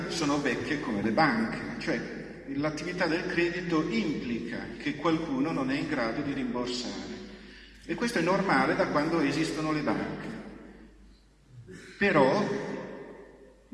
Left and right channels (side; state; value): both; identical; correlation 1.00